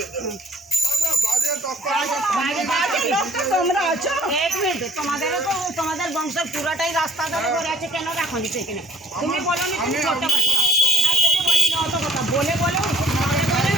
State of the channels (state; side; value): normal; both; correlation 0.55